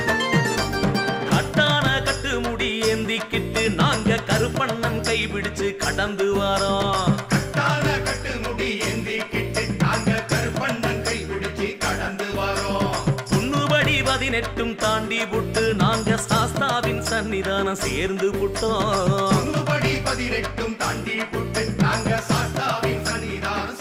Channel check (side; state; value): both; identical; correlation 1.00